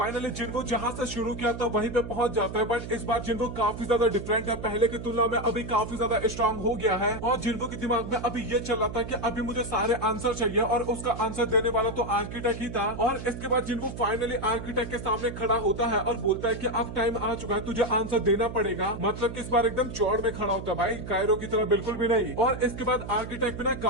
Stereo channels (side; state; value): right; noise; hum, 9 dB below the sound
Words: जिन्वो जहां से शुरू किया था वहीं पे पहुंच जाता है। बट इस बार जिन्वो काफी ज्यादा डिफरेंट है, पहले की तुलना में अभी काफी ज्यादा स्ट्रांग हो गया है। और जिन्वो के दिमाग में अभी ये चल रहा था कि अभी मुझे सारे आंसर चाहिए, और उसका आंसर देने वाला तो आर्किटेक्ट ही था। और इसके बाद जिन्वो फाइनली आर्किटेक्ट के सामने खड़ा होता है और बोलता है कि अब टाइम आ चुका है, तुझे आंसर देना पड़ेगा। मतलब कि इस बार एकदम चौड़ में खड़ा होता है भाई, कायरो की तरह बिल्कुल भी नहीं। और इसके बाद आर्किटेक्ट भी ना